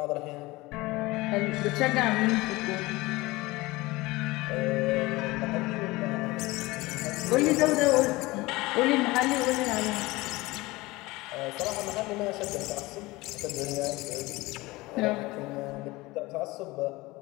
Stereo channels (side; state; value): right; quieter; 21.1 dB